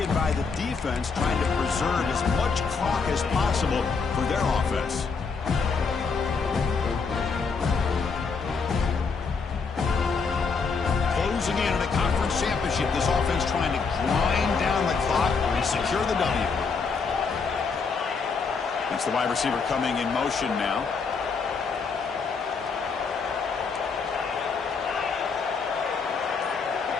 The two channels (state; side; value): quieter; right; 5.1 dB